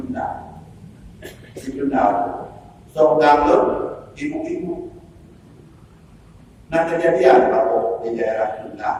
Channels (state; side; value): identical; both; correlation 1.00